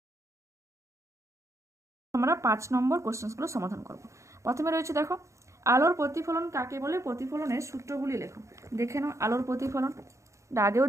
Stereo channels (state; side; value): late; left; 0.14 ms